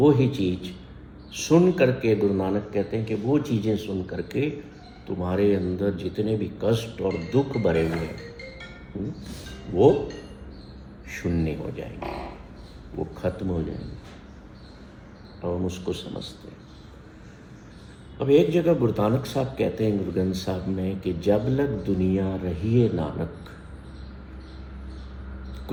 ही चीज़ सुन करके, गुरु नानक कहते हैं कि वो चीज़ें सुन करके तुम्हारे अंदर जितने भी कष्ट और दुख भरे हुए हैं वो शून्य हो जाएंगे, वो खत्म हो जाएंगे, और हम उसको समझते हैं। अब एक जगह गुरु नानक साहब कहते हैं गुरु ग्रंथ साहब में कि जब लग दुनिया रहिए नानक,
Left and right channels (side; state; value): both; identical; correlation 1.00